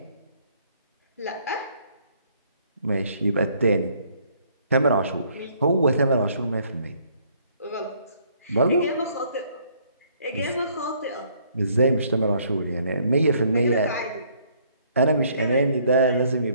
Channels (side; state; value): both; inverted; correlation -0.65